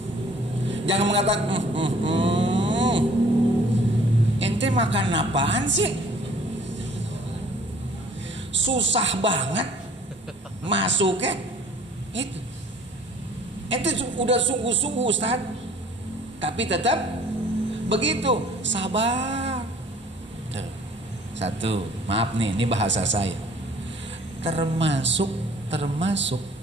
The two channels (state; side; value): normal; both; correlation 0.54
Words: Jangan mengatakan ente makan apaan sih? Susah banget masuknya. Itu ente udah sungguh-sungguh Ustaz, tapi tetap begitu. Sabar. Satu, maaf nih, ini bahasa saya. Termasuk